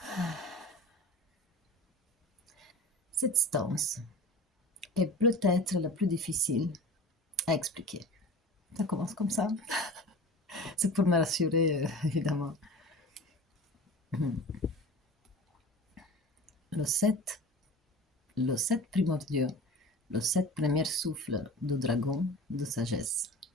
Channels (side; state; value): both; normal; correlation 0.37